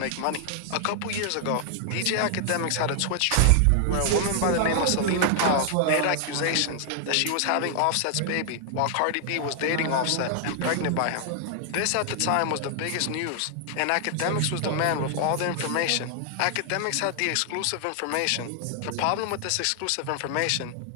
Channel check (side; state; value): both; different; correlation 0.00